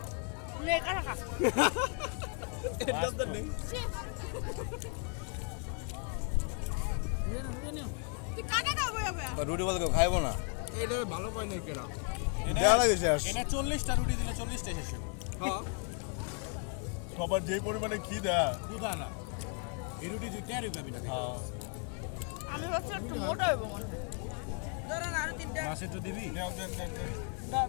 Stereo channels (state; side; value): quieter; right; 39.3 dB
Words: নে কাটা খা তুই কাটা খাবো যাবে রুটি বলতে কেউ খাইবো না এটা ভালো পাই নাই কেরা এটা 40টা রুটি দিলে 40টা শেষ হবে হ্যাঁ সবার যে পরিমাণে খিদা খুদা না এই রুটি তুই টেরই পাবি না আমি ভাবছি একটু মোটা হইব মনে হয় ধরেন আরো তিনটা মাছ একটু দিবি